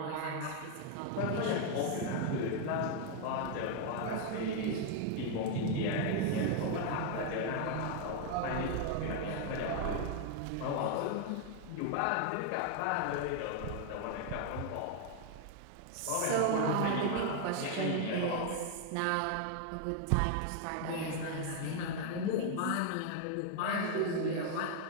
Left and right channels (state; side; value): different; both; correlation 0.00